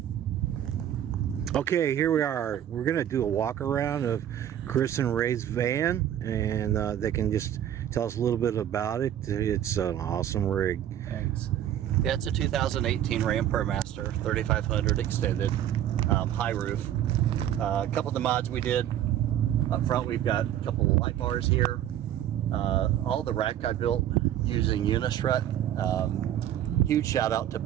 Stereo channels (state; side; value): quieter; left; 11.1 dB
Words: Okay, here we are. We're going to do a walk around of Chris and Ray's van, and they can just tell us a little bit about it. It's an awesome rig. Thanks. Yeah, it's a 2018 Ram ProMaster 3500 extended, high roof. A couple of the mods we did up front, we've got a couple of light bars here. All the rack I built using Unistrut. Huge shout out to